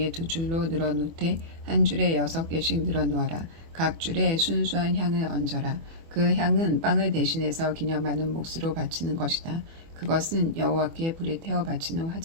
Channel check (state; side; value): late; left; 24 ms